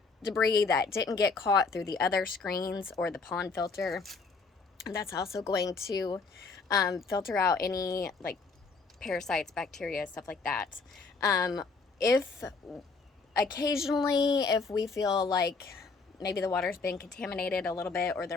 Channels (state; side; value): quieter; right; 4.4 dB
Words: debris that didn't get caught through the other screens or the pond filter. And that's also going to filter out any like parasites, bacteria, stuff like that. If occasionally, if we feel like maybe the water's been contaminated a little bit or there